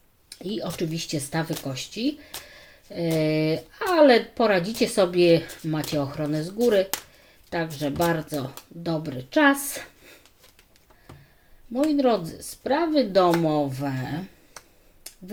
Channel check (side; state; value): both; identical; correlation 1.00